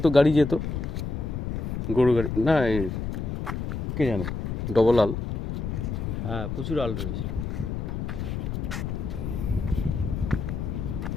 গাড়ি যেত, গরু গাড়ি না, এই কে জানে, ডবল আল। হ্যাঁ, প্রচুর আল রয়েছে।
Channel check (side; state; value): left; noise; rumble, 3 dB below the sound